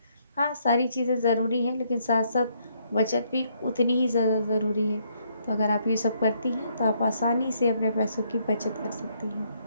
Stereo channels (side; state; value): both; inverted; correlation -0.72